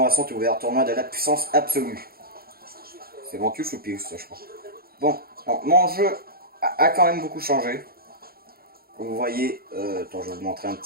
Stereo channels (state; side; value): late; left; 0.44 ms